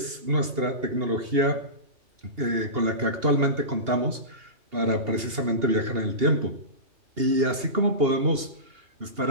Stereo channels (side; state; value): left; late; 2.8 ms